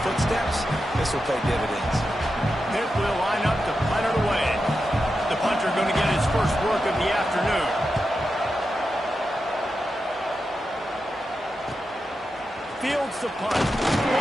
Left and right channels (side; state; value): both; normal; correlation 0.89